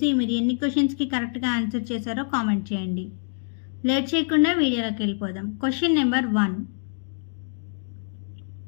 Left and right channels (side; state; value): right; silent; 61 dB below the other